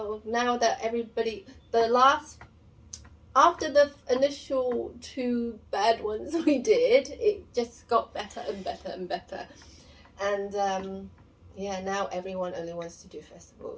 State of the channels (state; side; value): identical; both; correlation 1.00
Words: now that everybody, after the initial 2 bad ones we did, it just got better and better and better. And yeah, now everyone only wants to do